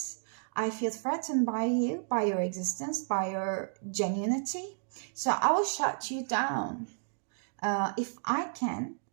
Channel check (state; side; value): silent; left; digital silence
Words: I feel threatened by you, by your existence, by your genuinity. So I will shut you down. If I can,